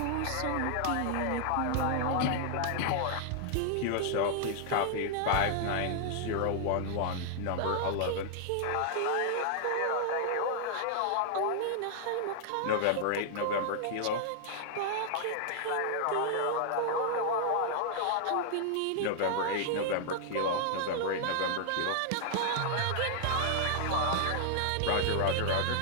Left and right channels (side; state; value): both; different; correlation 0.00